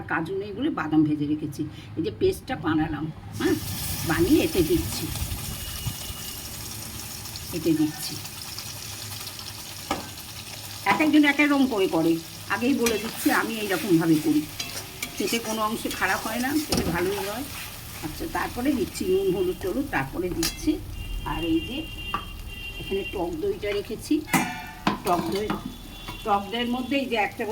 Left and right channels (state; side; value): identical; both; correlation 1.00